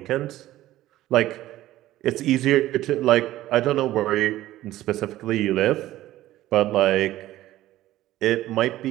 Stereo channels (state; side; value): quieter; left; 15.1 dB